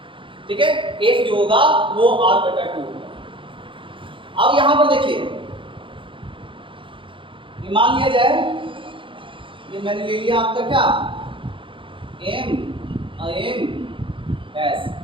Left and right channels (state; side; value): late; left; 0.25 ms